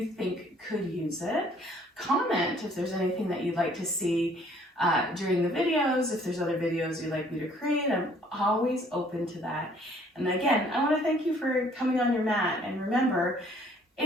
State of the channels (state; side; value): normal; both; correlation 0.60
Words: think could use it. Comment if there's anything that you'd like to see during the videos. If there's other videos you'd like me to create, I'm always open to that. And again, I want to thank you for coming on your mat. And remember,